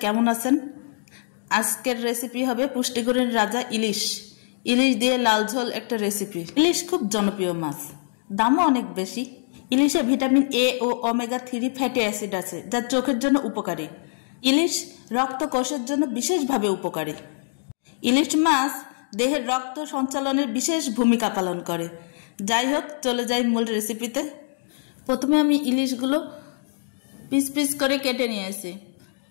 কেমন আছেন? আজকের রেসিপি হবে পুষ্টিগুণের রাজা ইলিশ। ইলিশ দিয়ে লাল ঝোল একটা রেসিপি। ইলিশ খুব জনপ্রিয় মাছ, দামও অনেক বেশি। ইলিশে ভিটামিন এ ও ওমেগা 3 ফ্যাটি অ্যাসিড আছে, যা চোখের জন্য উপকারী। ইলিশ রক্তকোষের জন্য বিশেষভাবে উপকারী। ইলিশ মাছ দেহের রক্ত সঞ্চালনের বিশেষ ভূমিকা পালন করে। যাই হোক, চলে যাই মূল রেসিপিতে। প্রথমে আমি ইলিশগুলো পিস পিস করে কেটে নিয়েছি।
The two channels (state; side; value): silent; right; digital silence